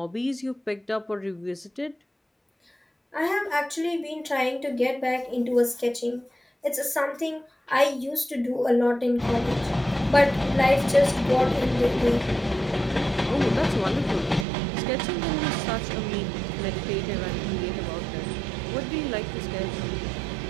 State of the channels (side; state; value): left; drops out; at 14.5 s